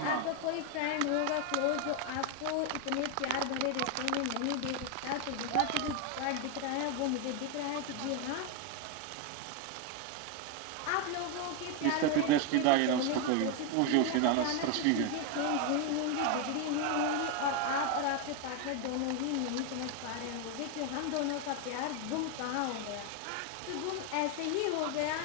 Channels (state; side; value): different; both; correlation 0.01